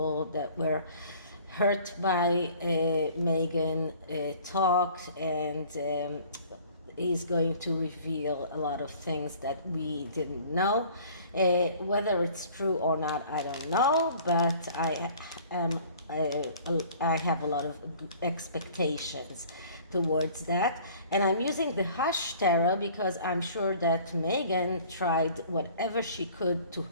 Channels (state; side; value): inverted; both; correlation -0.51